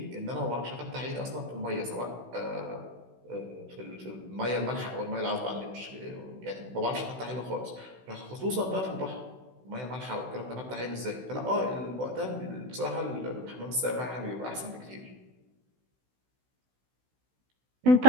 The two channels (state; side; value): late; left; 16 ms